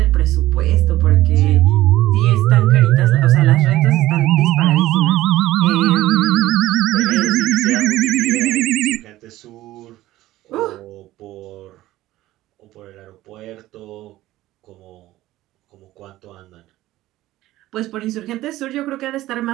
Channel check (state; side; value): quieter; left; 16.0 dB